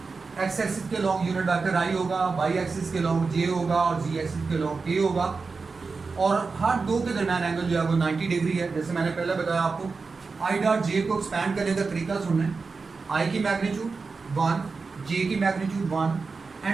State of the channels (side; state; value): left; quieter; 4.5 dB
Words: एक्स एक्सिस के लॉन्ग यूनिट वेक्टर आई होगा, वाई एक्सिस के लॉन्ग जे होगा और जी एक्सिस के लॉन्ग के होगा। और हर दो के दरमियान एंगल जो है वो 90 डिग्री है। जैसे मैंने पहले बताया आपको, आई डॉट जे को एक्सपैंड करने का तरीका सुनना है। आई की मैग्नीट्यूड 1, जे की magnitude 1